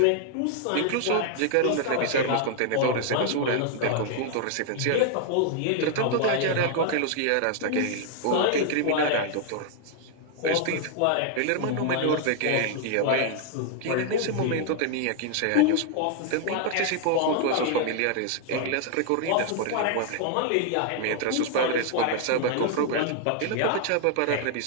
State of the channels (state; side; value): different; both; correlation 0.00